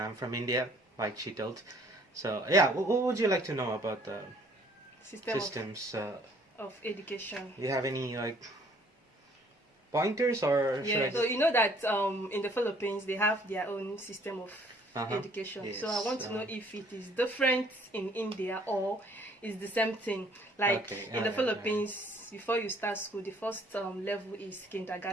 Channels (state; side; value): normal; both; correlation 0.59